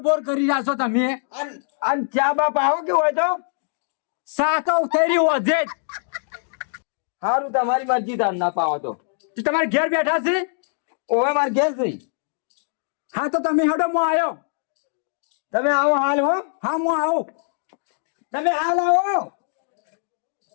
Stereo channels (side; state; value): right; silent; digital silence